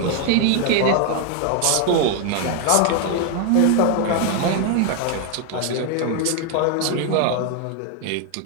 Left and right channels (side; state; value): both; different; correlation 0.00